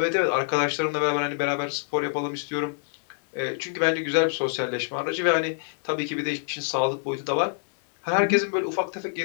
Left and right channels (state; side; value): silent; right; digital silence